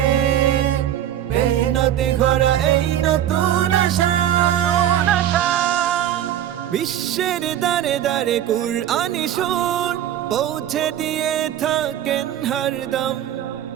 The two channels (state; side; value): quieter; left; 11.2 dB